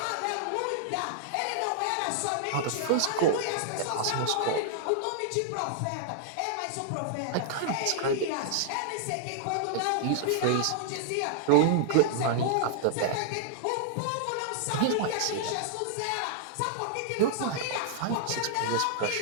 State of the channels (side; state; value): both; different; correlation -0.01